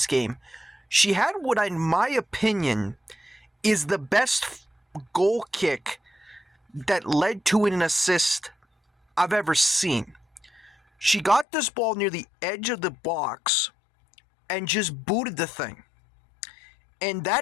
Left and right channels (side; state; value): right; drops out; at 11.5 s